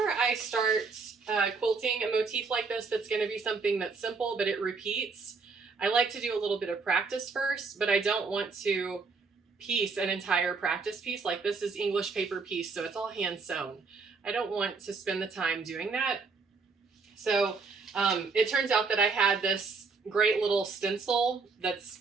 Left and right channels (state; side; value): quieter; left; 4.5 dB